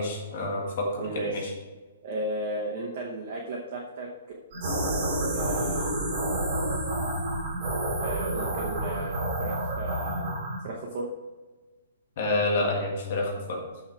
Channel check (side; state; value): both; inverted; correlation -0.46